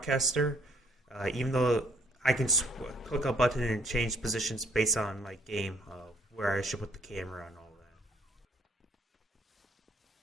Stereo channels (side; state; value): both; normal; correlation 0.65